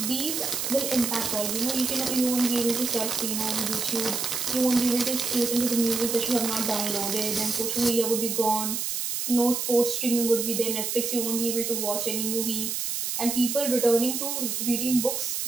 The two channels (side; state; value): right; noise; hiss, 2 dB below the sound